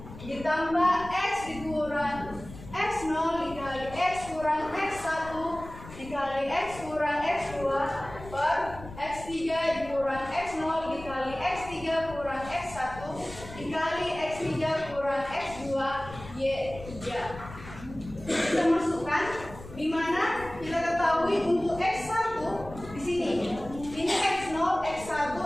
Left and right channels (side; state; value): left; noise; rumble, 15 dB below the sound